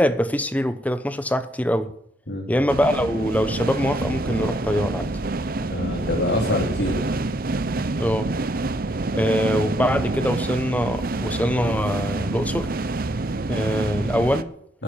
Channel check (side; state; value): both; normal; correlation 0.73